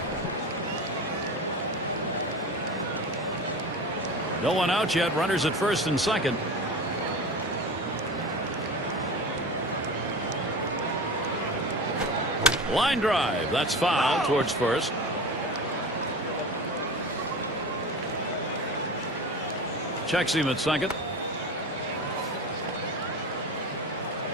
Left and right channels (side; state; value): both; normal; correlation 0.30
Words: No one out yet. Runners at first and second. Line drive. That's foul towards first. Checks him at second.